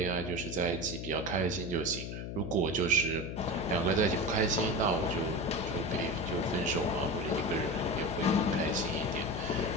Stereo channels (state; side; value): noise; left; hum, 6 dB below the sound